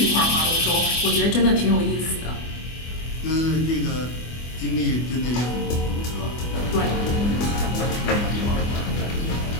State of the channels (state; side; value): late; right; 24 ms